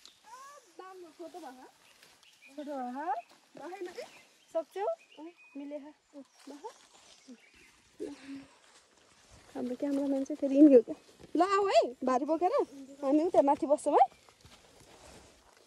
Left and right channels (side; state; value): both; identical; correlation 1.00